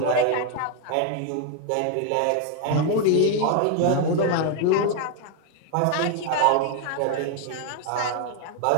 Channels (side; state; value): both; different; correlation 0.01